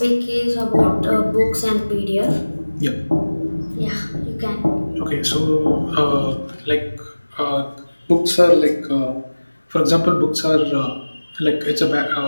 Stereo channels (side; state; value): both; inverted; correlation -1.00